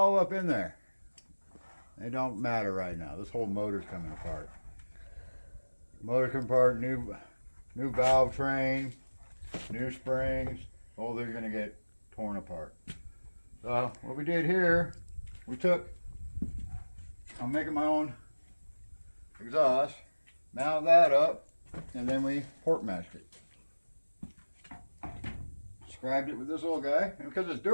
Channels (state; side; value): inverted; both; correlation -1.00